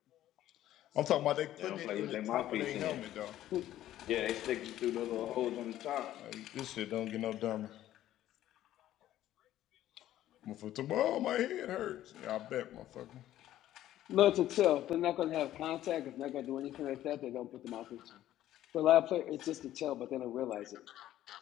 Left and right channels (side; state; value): right; quieter; 13.2 dB